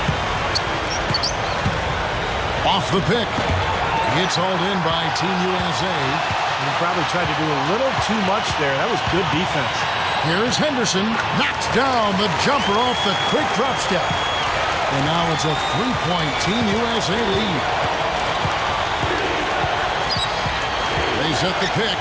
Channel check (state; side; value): identical; both; correlation 1.00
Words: Off the pick. It's hauled in by Team USA. He probably tried to do a little too much there. That was good defense. Here's Henderson. Knocks down the jumper off the quick drop step. And now it's a 3-point Team USA lead. They set the pick.